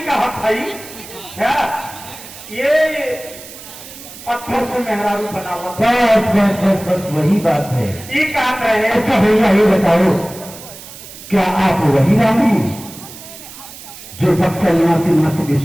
का हथाई क्या? ये पत्थर से मेहरारू बना हुआ। बस वही बात है। ये काम रहे। अच्छा भैया ये बताओ, क्या आप वही राम हैं जो बक्सर निवासी महर्षि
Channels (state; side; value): noise; right; hiss, 16 dB below the sound